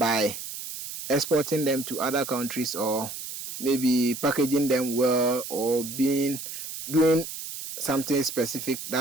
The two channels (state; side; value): noise; right; hiss, 9 dB below the sound